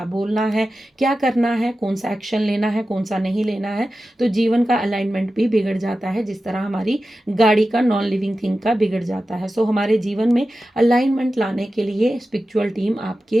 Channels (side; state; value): both; normal; correlation 0.93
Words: बोलना है, क्या करना है, कौन सा एक्शन लेना है, कौन सा नहीं लेना है, तो जीवन का अलाइनमेंट भी बिगड़ जाता है, जिस तरह हमारी गाड़ी का, नॉन लिविंग थिंग का बिगड़ जाता है। सो हमारे जीवन में अलाइनमेंट लाने के लिए स्पिरिचुअल टीम